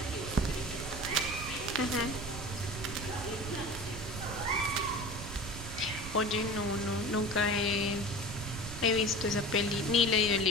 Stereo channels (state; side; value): noise; right; rumble, 9 dB below the sound